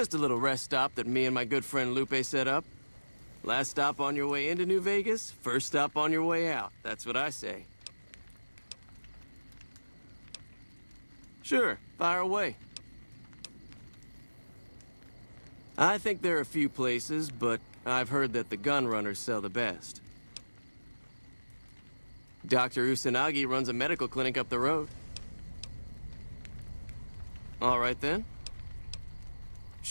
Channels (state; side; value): inverted; both; correlation -1.00